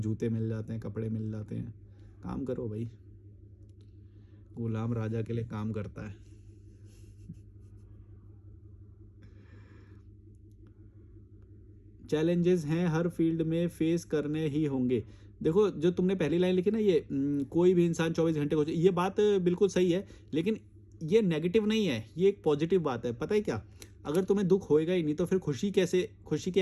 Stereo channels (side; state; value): both; identical; correlation 1.00